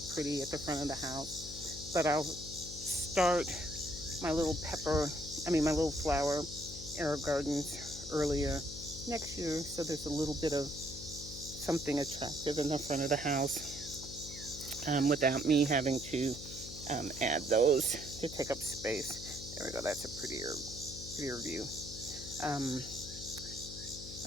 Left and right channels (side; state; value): left; noise; hum, 12 dB below the sound